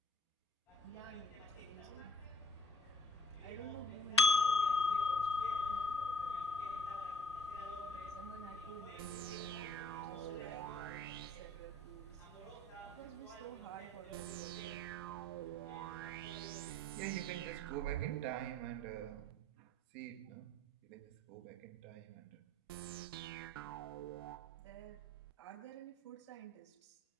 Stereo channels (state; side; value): normal; both; correlation 0.60